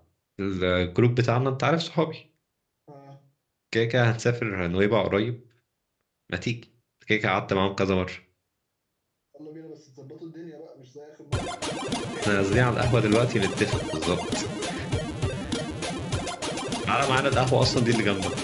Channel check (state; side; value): identical; both; correlation 1.00